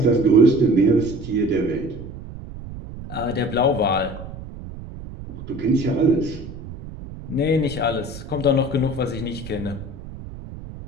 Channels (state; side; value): noise; right; rumble, 12 dB below the sound